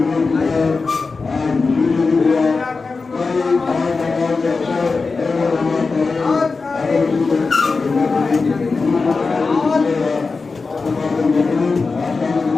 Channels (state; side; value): quieter; right; 4.3 dB